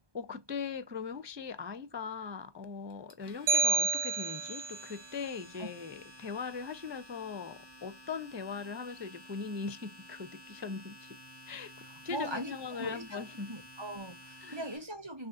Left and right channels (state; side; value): late; left; 1.2 ms